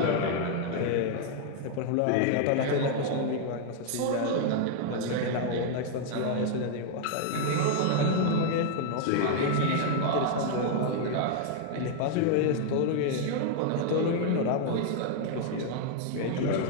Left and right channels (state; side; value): different; both; correlation -0.01